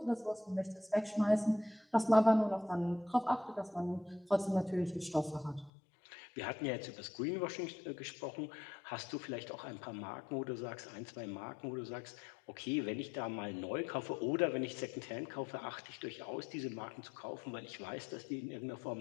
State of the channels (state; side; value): drops out; right; at 5.7 s